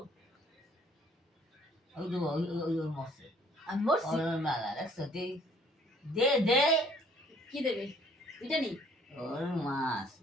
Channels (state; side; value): normal; both; correlation 0.59